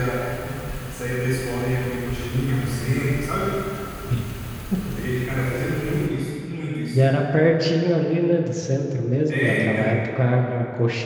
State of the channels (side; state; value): both; identical; correlation 1.00